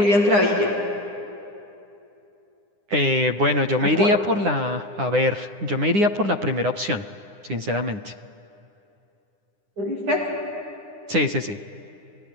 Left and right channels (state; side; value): late; left; 9.9 ms